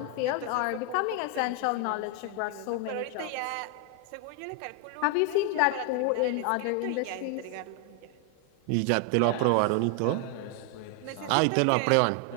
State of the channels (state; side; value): different; both; correlation 0.00